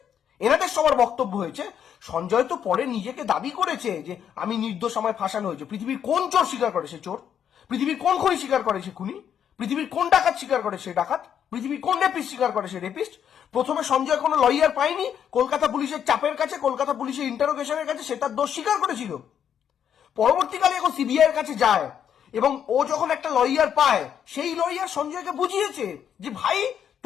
এনাদের সবার বক্তব্য হয়েছে, সঞ্জয় তো পরে নিজেকে দাবি করেছে যে আমি নির্দোষ, আমায় ফাঁসানো হয়েছে। পৃথিবীর কোন চোর স্বীকার করে সে চোর? পৃথিবীর কোন খুনি স্বীকার করে সে খুনি? পৃথিবীর কোন ডাকাত স্বীকার করে সে ডাকাত? পৃথিবীর কোন রেপিস্ট স্বীকার করে সে রেপিস্ট? প্রথমে সঞ্জয় কোনো লয়ার পায়নি, কলকাতা পুলিশের চাপের কাছে, কলকাতা পুলিশের ইন্টারোগেশনের কাছে সে তার দোষ স্বীকার করেছিল। পরবর্তীকালে এখন সিবিআই এর কাছে যায় এবং ও যখন একটা লয়ার পায়, সেই লয়ার সঞ্জয়কে বুঝিয়েছে যে ভাই,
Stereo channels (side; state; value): right; quieter; 8.8 dB